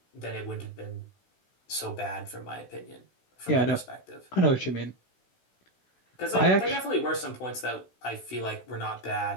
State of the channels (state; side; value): late; right; 16 ms